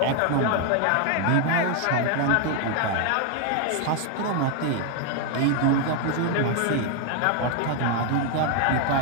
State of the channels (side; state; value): both; different; correlation 0.00